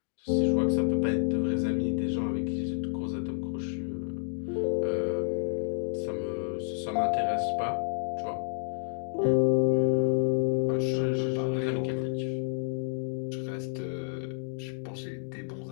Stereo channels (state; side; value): silent; right; digital silence